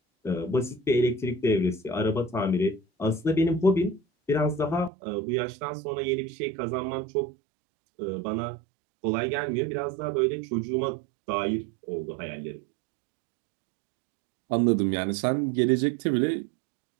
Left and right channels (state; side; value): drops out; left; at 4.9 s